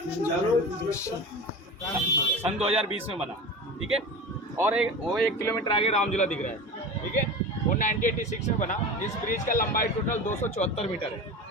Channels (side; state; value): both; normal; correlation 0.31